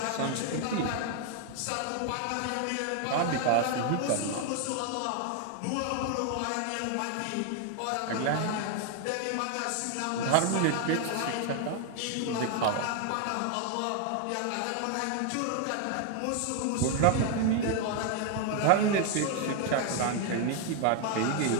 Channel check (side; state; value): both; different; correlation 0.00